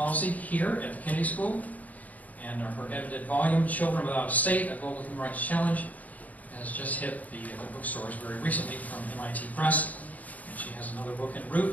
here at the Kennedy School. And her edited volume, Children Without a State, A Global Human Rights Challenge, has just hit the bookstores very recently from MIT Press. And she has another book en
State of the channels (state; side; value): late; right; 0.074 ms